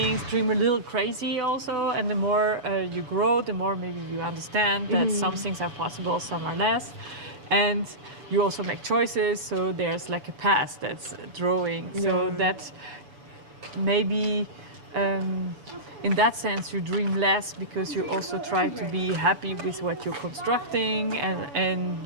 dream a little crazy also, and the more you grow, the more maybe you understand that some things are possible, some are less, and you also make choices, so there's like a path that's drawing, so that maybe in that sense you dream less, because you also try to be happy with what you're constructing, and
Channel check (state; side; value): late; left; 7.0 ms